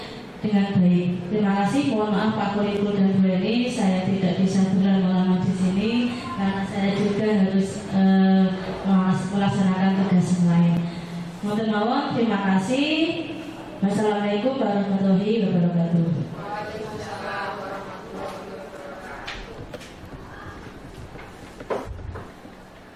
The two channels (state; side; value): identical; both; correlation 1.00